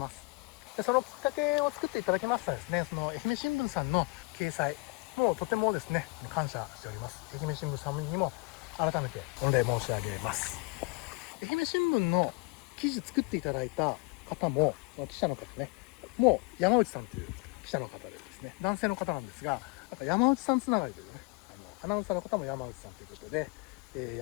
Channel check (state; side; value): quieter; right; 27.8 dB